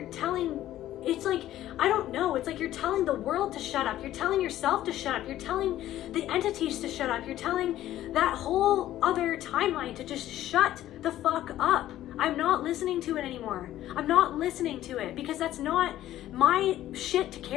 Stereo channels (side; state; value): right; quieter; 13.5 dB